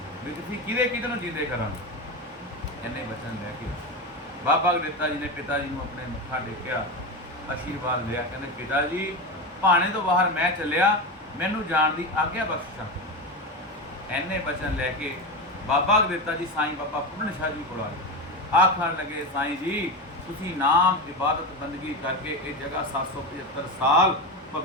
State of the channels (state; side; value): normal; both; correlation 0.19